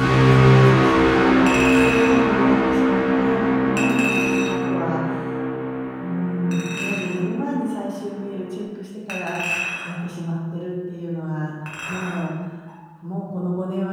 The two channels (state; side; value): identical; both; correlation 1.00